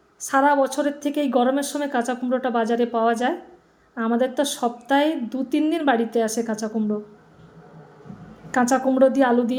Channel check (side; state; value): both; identical; correlation 1.00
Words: সারা বছরের থেকে এই গরমের সময় কাঁচা কুমড়োটা বাজারে পাওয়া যায়। আমাদের তো সপ্তাহে 2-3 দিন বাড়িতে আসে কাঁচা কুমড়ো। কাঁচা কুমড়ো দিয়ে আলু